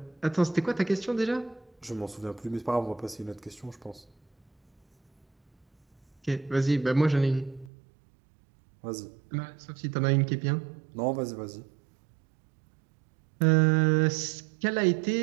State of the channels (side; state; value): left; drops out; at 7.7 s